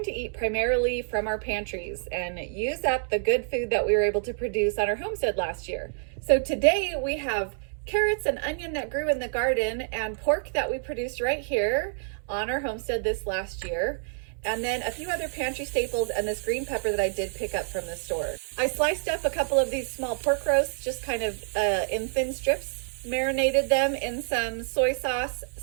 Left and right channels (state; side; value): silent; left; digital silence